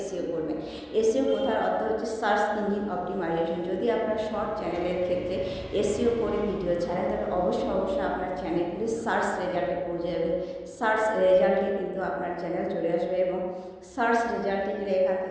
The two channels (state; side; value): identical; both; correlation 1.00